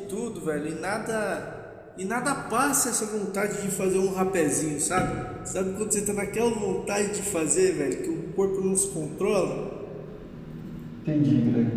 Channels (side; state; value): both; identical; correlation 1.00